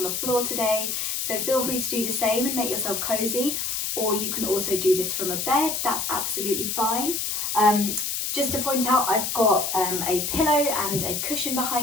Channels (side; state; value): left; noise; hiss, 1 dB below the sound